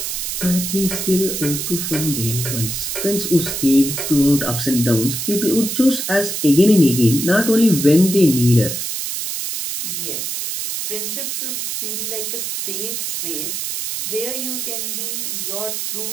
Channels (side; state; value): right; noise; hiss, 3 dB below the sound